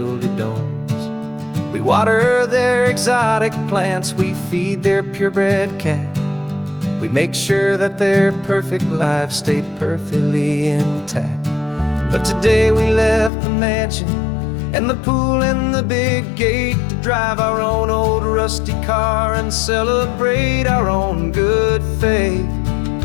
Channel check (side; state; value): right; drops out; at 13.3 s